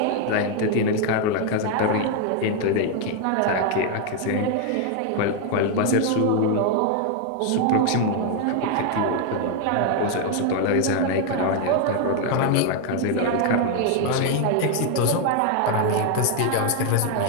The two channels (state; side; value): different; both; correlation 0.01